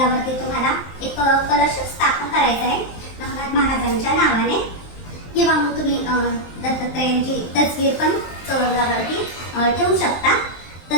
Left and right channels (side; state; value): right; late; 23 ms